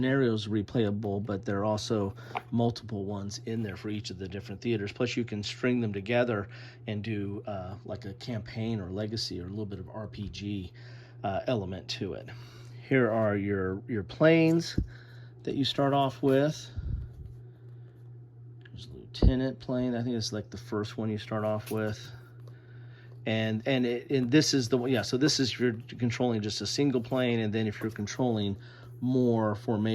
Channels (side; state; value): both; identical; correlation 1.00